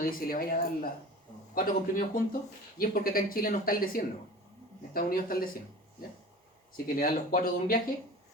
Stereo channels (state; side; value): normal; both; correlation 0.38